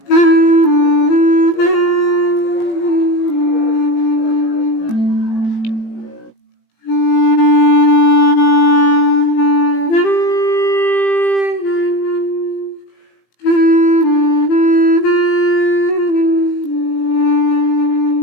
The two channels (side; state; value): right; late; 18 ms